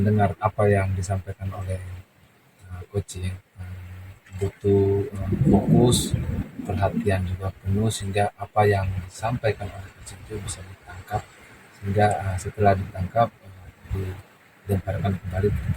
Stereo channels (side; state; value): both; identical; correlation 1.00